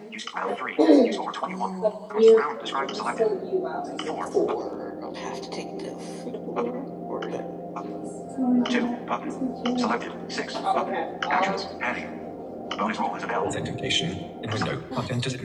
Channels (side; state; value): both; identical; correlation 1.00